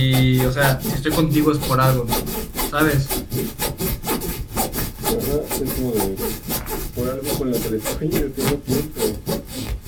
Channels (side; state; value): both; identical; correlation 1.00